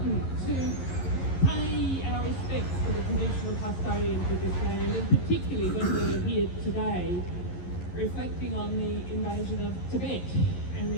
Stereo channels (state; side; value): late; right; 11 ms